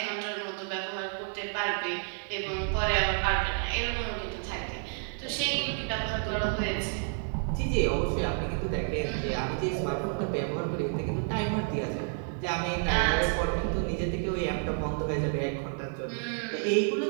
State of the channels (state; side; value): silent; left; 58 dB below the other